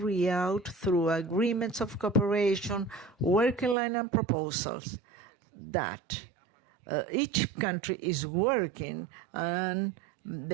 out through agreements of cooperation, working line and proposals, that each country is working, and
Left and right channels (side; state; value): left; drops out; at 3.8 s